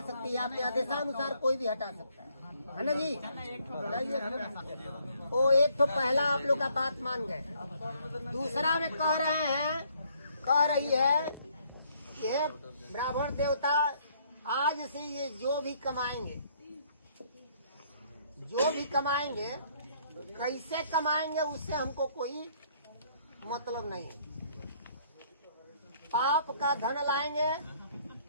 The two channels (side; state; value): both; inverted; correlation -0.65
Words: सकती है, आपके आदेशानुसार कोई भी हटा सकता है ना जी। वो एक तो पहला आप लोग का बात मान गए। दूसरा में कह रही है ये ब्राह्मण देवता आज से ये जो भी कमाएंगे कैसे कमाएंगे उससे हमको कोई मतलब नहीं है। पाप का धन लाएंगे